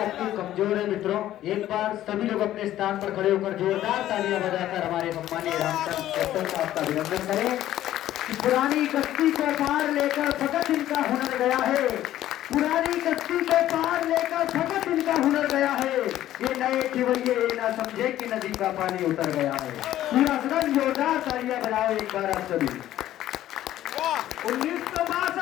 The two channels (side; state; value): right; quieter; 13.2 dB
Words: कमजोर है मित्रों, एक बार सभी लोग अपने स्थान पर खड़े होकर जोरदार तालियां बजाकर हमारे सम्मानीय रामचंद्र कैप्टन साहब का अभिनंदन करें कि पुरानी कश्ती को पार लेकर भगत इनका हुनर गया है, पुरानी कश्ती को पार लेकर भगत इनका हुनर गया है। ये नए खिवैये ये ना समझे कि नदी का पानी उतर गया है। पूरा सदन जोरदार तालियां बजाओ एक बार आप सभी।